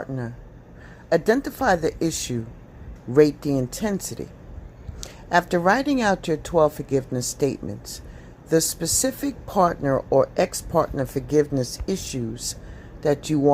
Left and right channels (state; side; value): identical; both; correlation 1.00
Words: Identify the issue, rate the intensity. After writing out your 12 forgiveness statements, the specific partner or ex-partner forgiveness issues that you